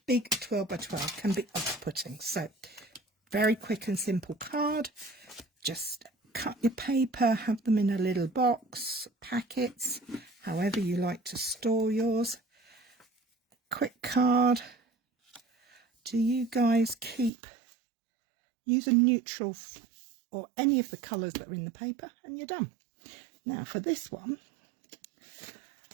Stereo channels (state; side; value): drops out; left; at 17.3 s